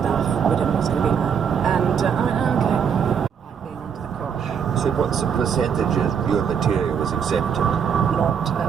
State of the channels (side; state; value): left; quieter; 7.3 dB